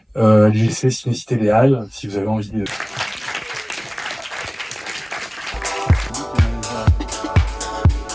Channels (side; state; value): both; identical; correlation 1.00